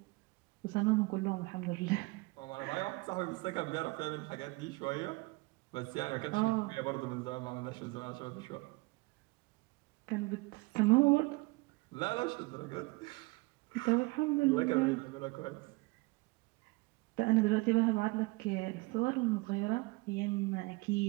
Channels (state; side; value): quieter; left; 24.5 dB